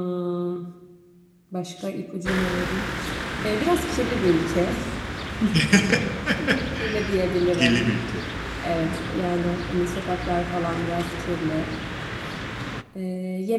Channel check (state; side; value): identical; both; correlation 1.00